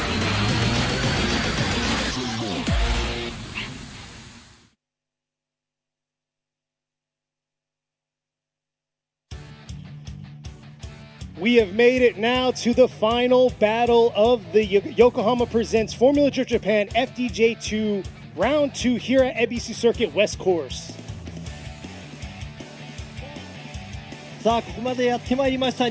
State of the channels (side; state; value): both; identical; correlation 1.00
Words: We have made it now to the final battle of the Yokohama Presents Formula Drift Japan FDJ2 Round 2 here at Ebisu Circuit West Course. さあここまでやってまいりました